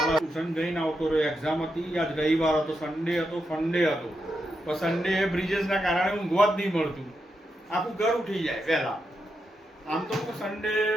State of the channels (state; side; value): normal; both; correlation 0.85